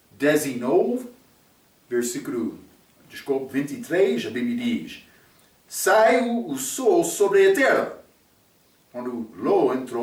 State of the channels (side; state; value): both; identical; correlation 1.00